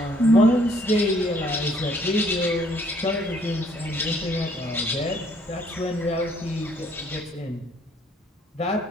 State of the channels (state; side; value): normal; both; correlation 0.64